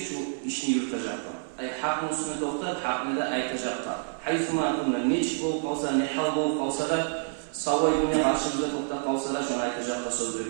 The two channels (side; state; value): left; silent; 59 dB below the other